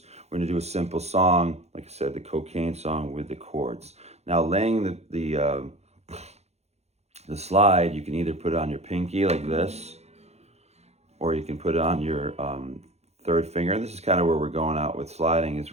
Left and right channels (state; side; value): late; left; 0.31 ms